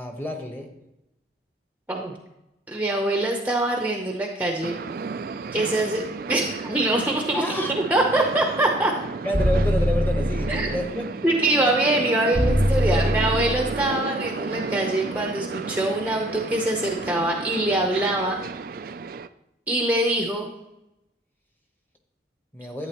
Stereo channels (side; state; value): both; normal; correlation 0.58